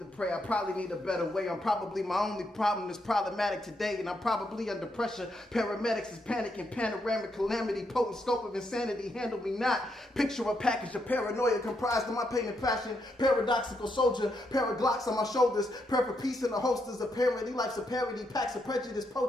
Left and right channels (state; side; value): normal; both; correlation 0.79